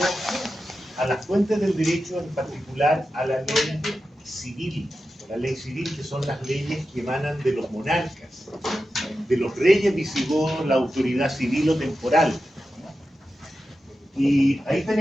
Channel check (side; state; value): both; normal; correlation 0.91